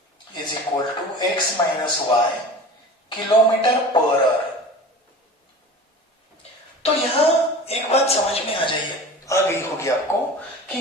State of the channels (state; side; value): normal; both; correlation 0.37